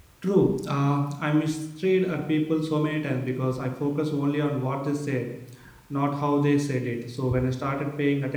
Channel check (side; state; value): both; identical; correlation 1.00